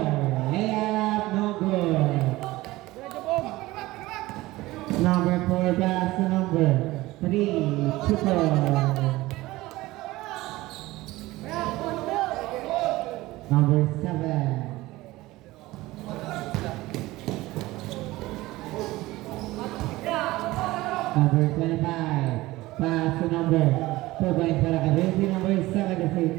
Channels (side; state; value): left; quieter; 18.7 dB